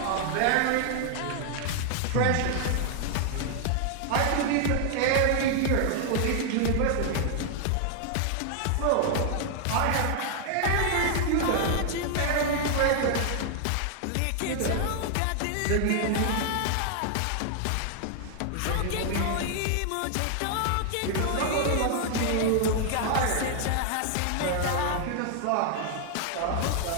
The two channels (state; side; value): different; both; correlation 0.00